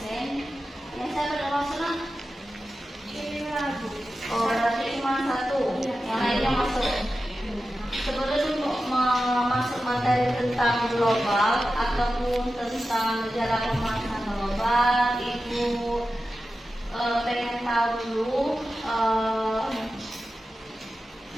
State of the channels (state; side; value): normal; both; correlation 0.93